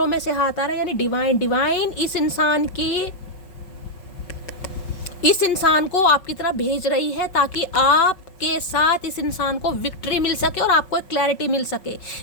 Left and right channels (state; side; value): late; right; 5.4 ms